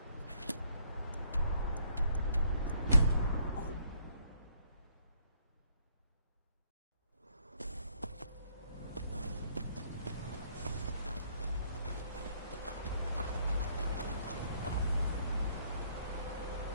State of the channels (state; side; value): inverted; both; correlation -0.68